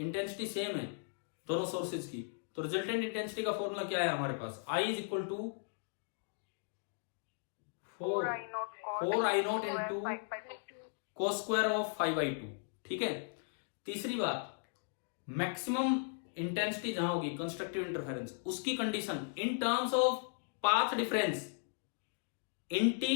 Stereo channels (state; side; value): silent; right; digital silence